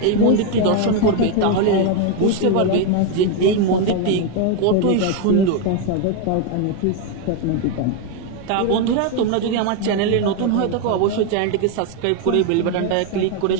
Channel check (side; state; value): both; different; correlation 0.01